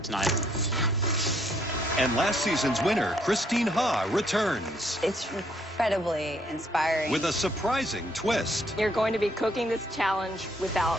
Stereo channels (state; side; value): normal; both; correlation 0.69